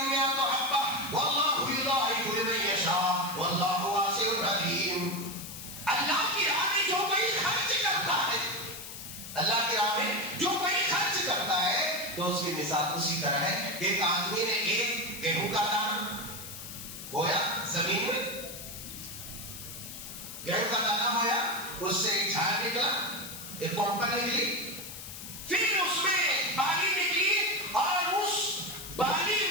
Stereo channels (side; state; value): left; noise; hiss, 11 dB below the sound